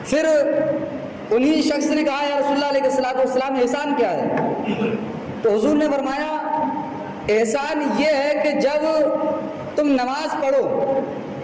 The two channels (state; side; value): identical; both; correlation 1.00